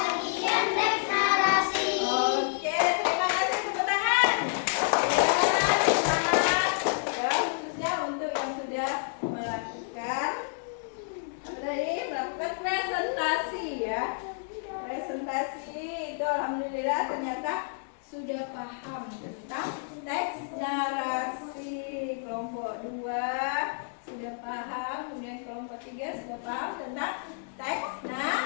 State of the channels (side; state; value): right; silent; digital silence